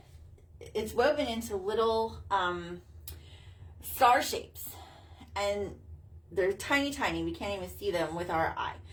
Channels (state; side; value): identical; both; correlation 1.00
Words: woven into little star shapes, and they're tiny, tiny. We can't even see them with our eye.